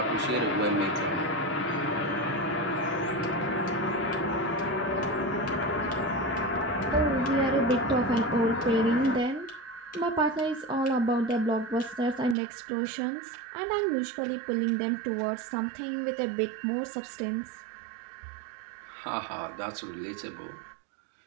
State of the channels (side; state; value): left; drops out; at 12.4 s